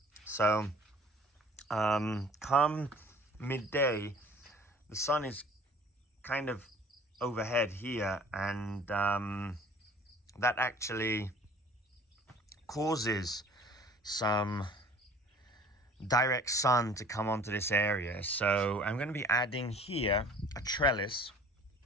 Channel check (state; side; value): normal; both; correlation 0.49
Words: So come midday, the sun is kind of overhead here, and that actually causes some direct sun to come onto this area. So I'm going to be adding here a trellis.